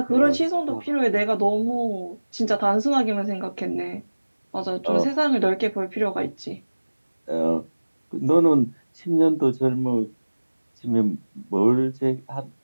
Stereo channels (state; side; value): inverted; both; correlation -1.00